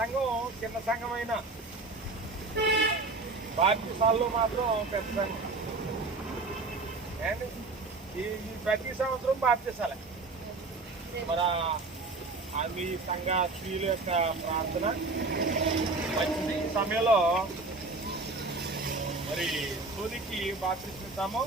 చిన్న సంఘం అయినా బాప్తిసాల్లో మాత్రం పెద్ద సంఘం. అండ్ ఈ ప్రతి సంవత్సరం బాప్తిసాలే. మన మీ సంఘ స్త్రీల యొక్క ప్రార్థన మంచిది. ఈ సమయంలో మరి సోనికి బాప్తిస్తాము.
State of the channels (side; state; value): left; quieter; 3.5 dB